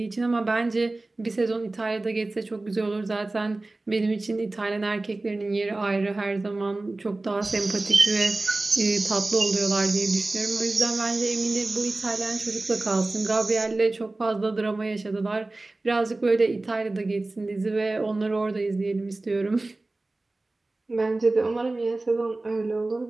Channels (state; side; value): quieter; left; 3.0 dB